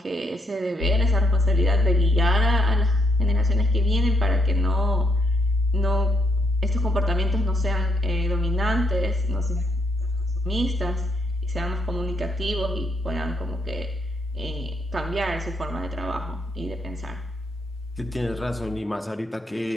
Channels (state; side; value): normal; both; correlation 0.75